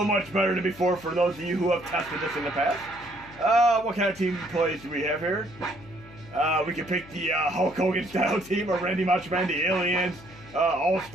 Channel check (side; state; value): left; noise; hum, 20 dB below the sound